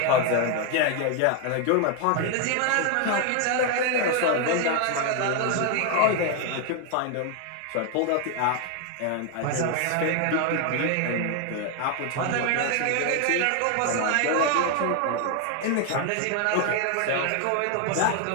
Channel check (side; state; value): both; different; correlation 0.01